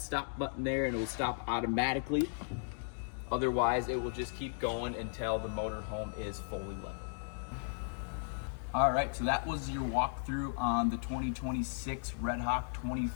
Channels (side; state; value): right; silent; digital silence